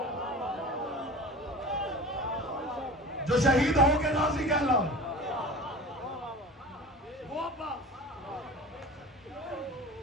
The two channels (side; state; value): both; normal; correlation 0.36